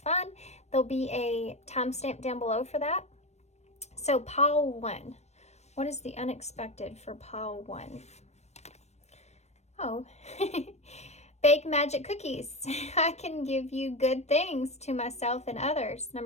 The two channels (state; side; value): late; right; 0.32 ms